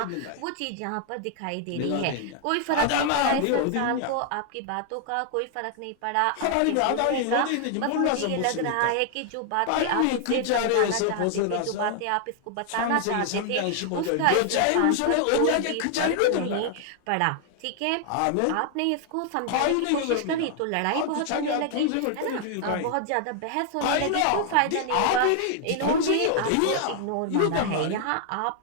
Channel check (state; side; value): different; both; correlation 0.00